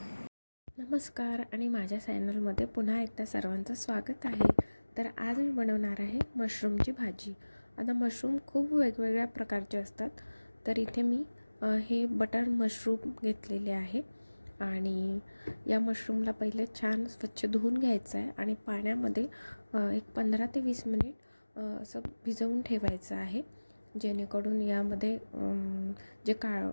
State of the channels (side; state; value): both; inverted; correlation -1.00